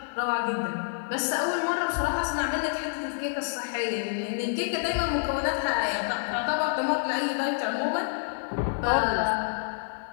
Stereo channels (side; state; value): right; silent; 57 dB below the other